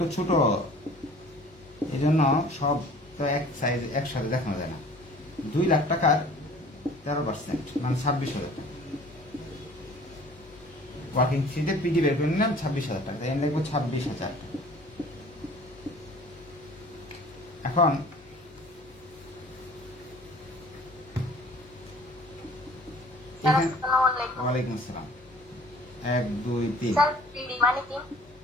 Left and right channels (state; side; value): normal; both; correlation 0.49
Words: ছোট, এই জন্য সব তো এক সাইজ একসাথে দেখানো যায় না। 2 লাখ টাকার 13% মানে 26,000 টাকা। ওয়ার্কিং 3 পিডি বের করে নিলাম 26,000 টাকা, তাই আমি লিখবো 26,000 টাকা। এখন ওয়ালাইকুম আসসালাম। 1 2 3